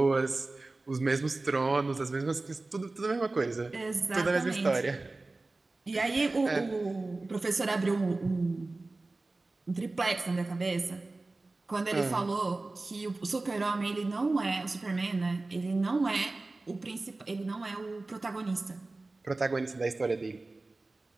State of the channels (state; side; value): quieter; left; 3.2 dB